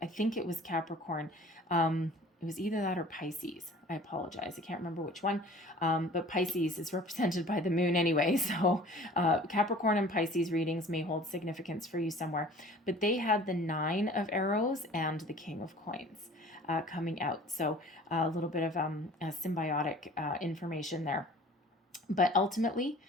I think it was Capricorn. It was either that or Pisces. I apologize. I can't remember which one. But Pisces is represented by the moon anyway. So Capricorn and Pisces readings may hold significance for you somewhere. But they had the Nine of Arrows and the King of Coins coming out. So a little bit of symbiotic information there. But ultimately,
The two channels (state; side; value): normal; both; correlation 0.47